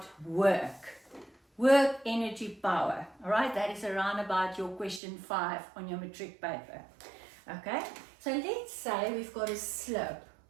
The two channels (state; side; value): drops out; left; at 5.0 s